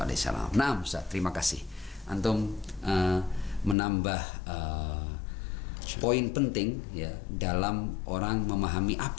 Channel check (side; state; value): right; drops out; at 3.8 s